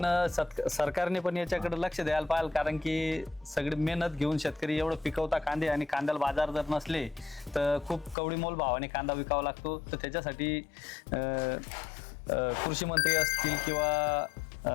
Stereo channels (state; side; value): drops out; right; at 8.2 s